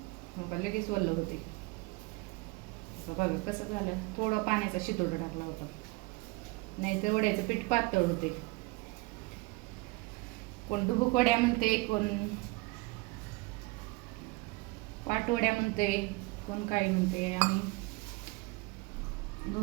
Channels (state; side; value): quieter; left; 23.7 dB